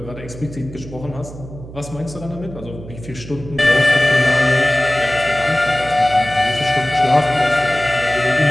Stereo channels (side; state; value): right; noise; hum, 14 dB below the sound